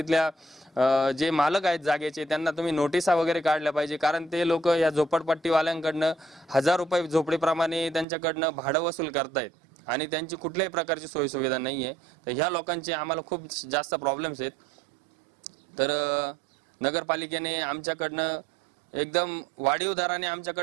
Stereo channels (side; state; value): left; drops out; at 8.1 s